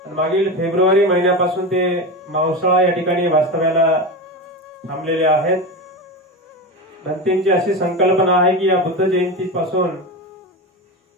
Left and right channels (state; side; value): normal; both; correlation 0.21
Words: मागील फेब्रुवारी महिन्यापासून ते मावसाळा या ठिकाणी वास्तव्याला थांबलेले आहेत. भंतेंची अशी संकल्पना आहे की या बुद्ध जयंतीपासून